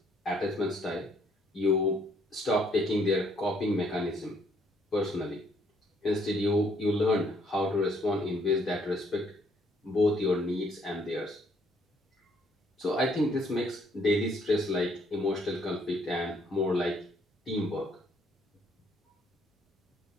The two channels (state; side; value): normal; both; correlation 0.66